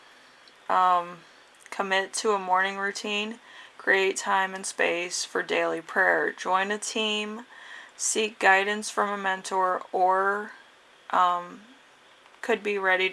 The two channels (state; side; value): identical; both; correlation 1.00